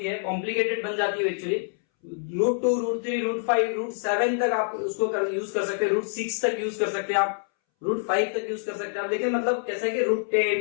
है, कॉम्प्लिकेटेड बन जाती है एक्चुअली। √2, √3, √5, √7 तक आप उसको यूज कर सकते हैं, √6 तक यूज कर सकते हैं आप, √5 तक यूज कर सकते हैं आप। लेकिन मतलब कैसा है कि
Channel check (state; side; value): silent; right; 61 dB below the other